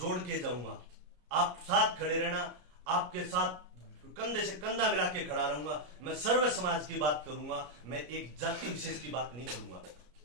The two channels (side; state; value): left; late; 33 ms